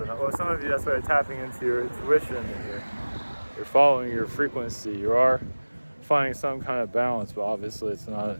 not. Well, some of you, that's why you're tapping into your intuition and you're following your frequency. You are finding some kind of balance, but obviously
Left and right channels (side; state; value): both; inverted; correlation -1.00